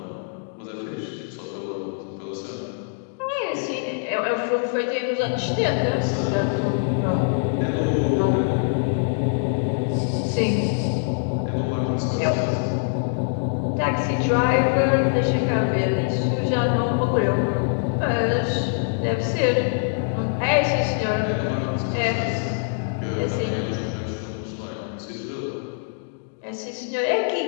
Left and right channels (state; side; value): silent; right; digital silence